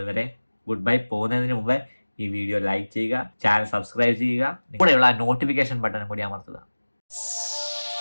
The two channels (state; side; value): inverted; both; correlation -1.00